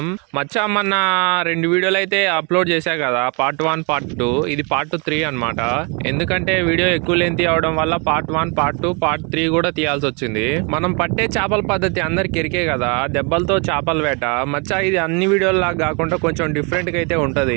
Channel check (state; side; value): quieter; left; 33.1 dB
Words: మచ్చా. మొన్న 2 వీడియోలు అయితే అప్లోడ్ చేశా కదా, పార్ట్ 1 పార్ట్ 2. ఇది పార్ట్ 3 అనమాట. ఎందుకంటే వీడియో ఎక్కువ లెంత్ అవడం వల్ల పార్ట్ 1 పార్ట్ 2 పార్ట్ 3 కూడా తీయాల్సి వచ్చింది. మనం పట్టే చేపల పద్ధతి అందరికి ఎరికే కదా, దెబ్బలతో చేపల వేట. మచ్చా ఇది అన్ని వీడియోల్లాగా కాకుండా కొంచెం డిఫరెంట్ గా అయితే